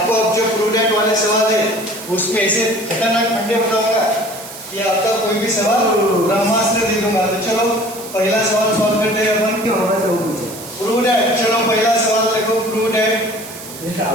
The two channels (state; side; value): noise; right; hiss, 14 dB below the sound